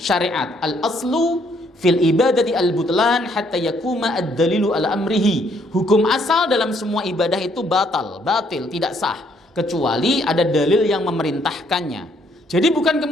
Al-aslu fil ibadati al-butlan hatta yakuma ad-dalilu ala amrihi. Hukum asal dalam semua ibadah itu batil, tidak sah, kecuali ada dalil yang memerintahkannya. Jadi bukan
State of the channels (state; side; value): normal; both; correlation 0.68